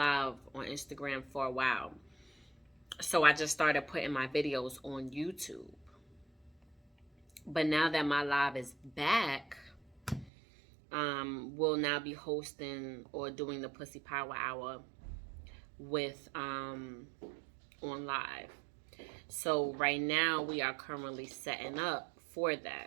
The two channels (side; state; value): left; drops out; at 10.3 s